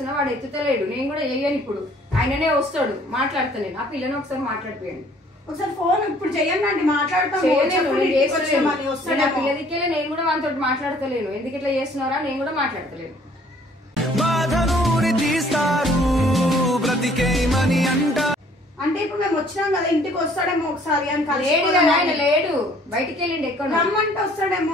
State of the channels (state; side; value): normal; both; correlation 0.58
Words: వాడు ఎత్తుతలేడు. నేను కూడా చెయ్యను. ఇప్పుడు ఆయననే వస్తాడు, మాట్లాడతా నేను. ఆ పిల్లని ఒకసారి మాట్లాడిపోయాను. ఒకసారి ఫోన్ ఇప్పుడు చెయ్యండి, మాట్లాడతాం. పిల్లదికే నేను కూడా వాళ్ళతో మాట్లాడతలేను. ఎందుకు ఇట్లా చేస్తున్నారా, నేను కూడా మాట్లాడతలేను. బాధనూరి తీస్తారు బ్రతికేమని అంట. అంటే ఇప్పుడు మేము వచ్చినాం కదా, ఇంటికి వస్తాడేమో ఒకసారి అని. లేడు కదా ఆయన, లేడు, బయటికి వెళ్ళిండు. ఎక్కడ రమ్మంటే వస్తాడేమో.